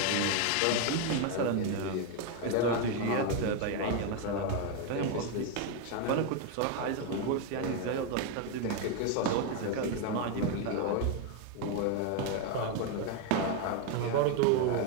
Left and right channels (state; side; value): different; both; correlation 0.02